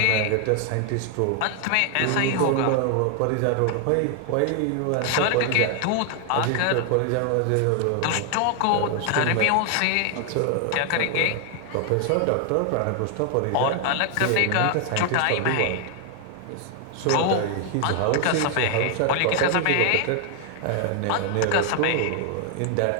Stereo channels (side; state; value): both; different; correlation 0.00